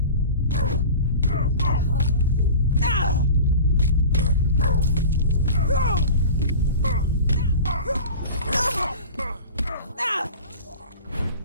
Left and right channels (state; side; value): inverted; both; correlation -0.36